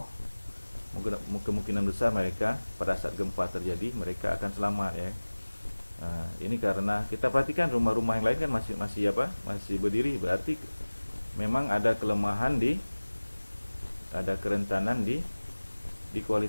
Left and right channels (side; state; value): both; inverted; correlation -1.00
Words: kemungkinan besar mereka pada saat gempa terjadi mereka akan selamat ya. Nah, ini karena kita perhatikan rumah-rumah yang lain kan masih berdiri, berarti memang ada kelemahan ada kerentanan di